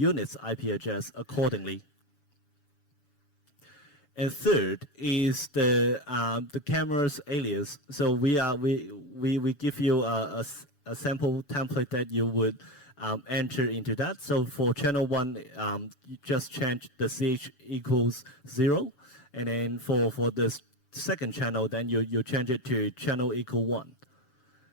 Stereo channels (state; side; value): late; right; 7.0 ms